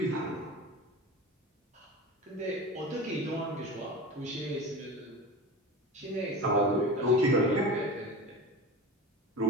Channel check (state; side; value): normal; both; correlation 0.30